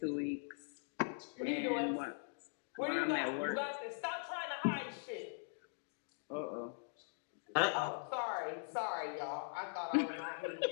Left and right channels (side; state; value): right; silent; digital silence